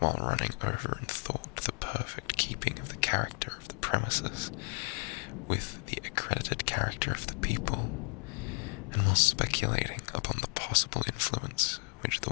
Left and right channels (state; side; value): quieter; right; 39.8 dB